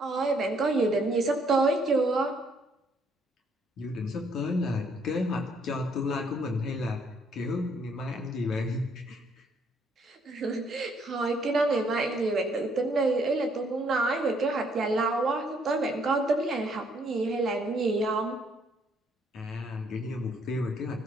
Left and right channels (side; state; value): both; normal; correlation 0.68